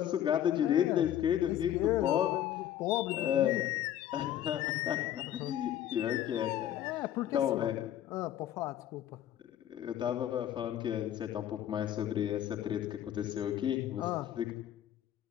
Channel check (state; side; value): quieter; right; 11.3 dB